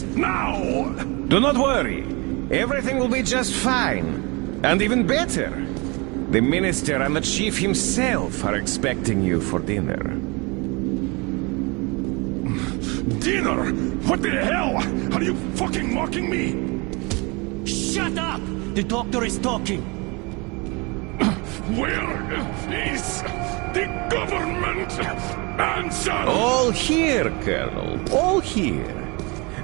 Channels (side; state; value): left; quieter; 28.0 dB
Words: now! Do not worry. Everything will be just fine. And even better. The Minister and the Chief himself are expecting you for dinner. Dinner? What the hell? Are you fucking mocking me? Shut up! The doctor is talking. Where is the government? Answer! All here, Colonel. All here.